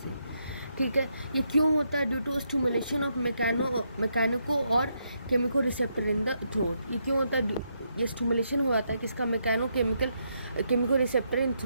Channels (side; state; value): both; inverted; correlation -0.79